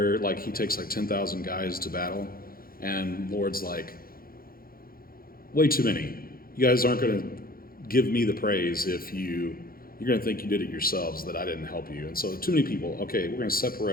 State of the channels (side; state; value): right; late; 0.42 ms